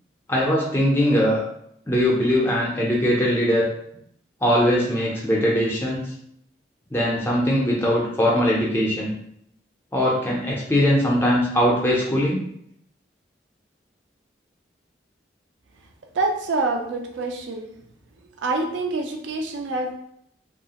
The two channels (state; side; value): normal; both; correlation 0.59